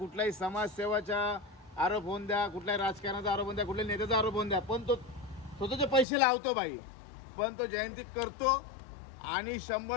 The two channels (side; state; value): right; drops out; at 6.1 s